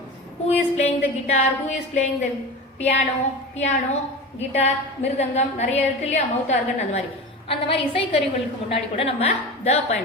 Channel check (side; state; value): both; normal; correlation 0.29